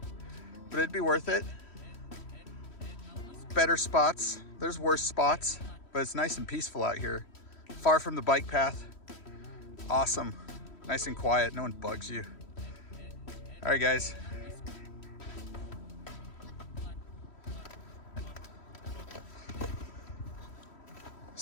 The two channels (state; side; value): late; right; 3.1 ms